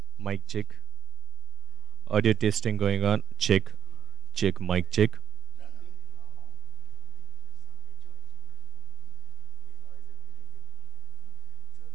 mic check. Audio testing going on. Check, check, mic check.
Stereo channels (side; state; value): left; quieter; 8.8 dB